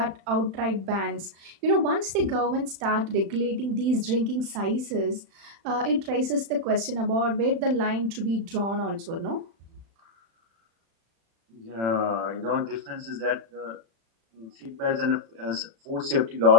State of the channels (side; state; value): left; late; 36 ms